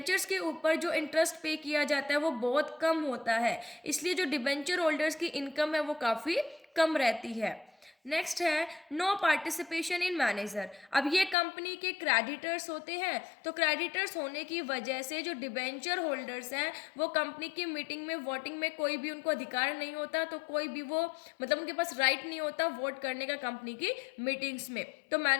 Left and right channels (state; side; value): drops out; right; at 11.4 s